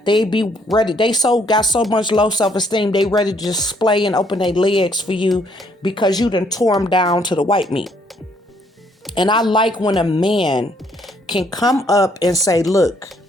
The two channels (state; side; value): normal; both; correlation 0.68